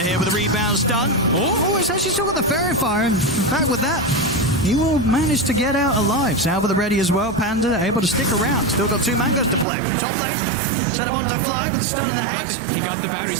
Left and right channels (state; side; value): drops out; left; at 9.7 s